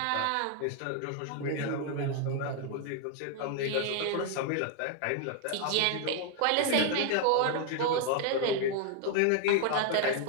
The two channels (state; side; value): different; both; correlation 0.00